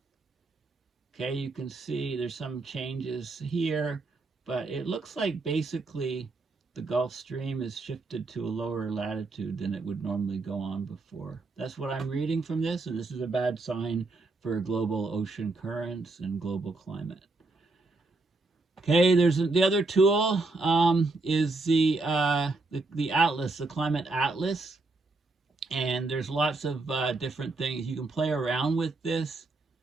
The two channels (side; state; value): left; quieter; 3.4 dB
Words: Okay, you can see there's some changes here, but it looks like basically the Gulf Stream is shifted to a lower latitude than it would normally go on before. That's what I'm reading from this, and this is a bad sign for global ocean currents and global climate. Okay, there's the other tool is the Atlas, the Climate Atlas, and there's lots of different things you can play around with this.